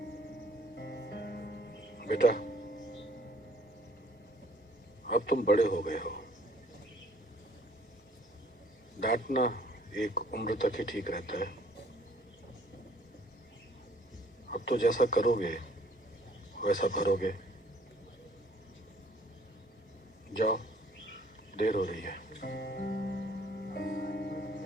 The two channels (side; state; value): both; normal; correlation 0.58